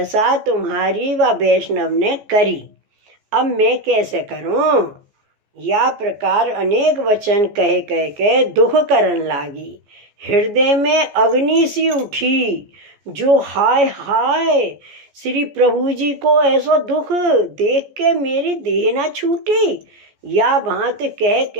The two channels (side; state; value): left; late; 14 ms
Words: तुम्हारी व वैष्णव ने करी। अब मैं कैसे करूं। या प्रकार अनेक वचन कह कह के दुख करन लागी। हृदय में अग्नि सी उठी, जो हाय हाय श्री प्रभु जी को ऐसा दुख देख के मेरी देह ना छूटी। या भांत कह